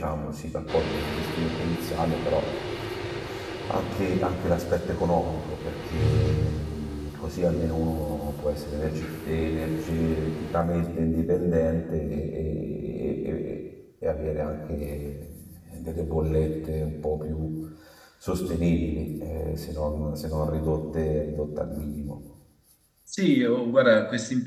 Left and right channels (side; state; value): both; identical; correlation 1.00